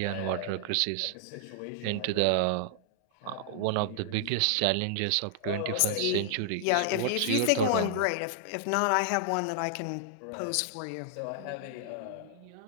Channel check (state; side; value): different; both; correlation -0.01